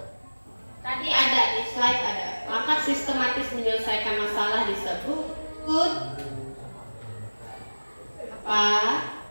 tadi ada di slide ada, langkah sistematis menyelesaikan masalah disebut apa?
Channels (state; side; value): inverted; both; correlation -1.00